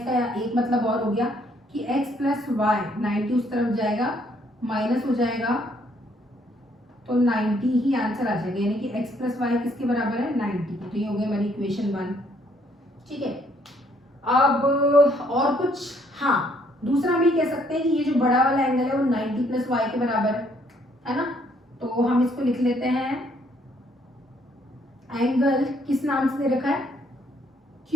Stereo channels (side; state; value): both; normal; correlation 0.67